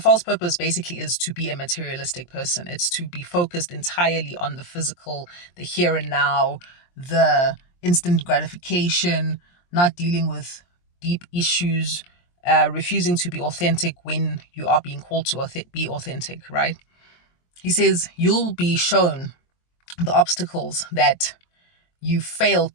purpose basically is to be a materialistic person. It's to be focused entirely on the physical, the here and now, the instant gratification, not dealing with deep issues, refusing to be authentic when you are being called to be authentic, right? He says you'll be shown the obstacles that you failed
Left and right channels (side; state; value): right; late; 23 ms